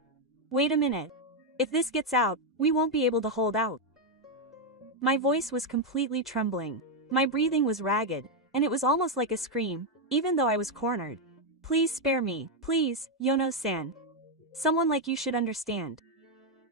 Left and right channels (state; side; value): normal; both; correlation 0.02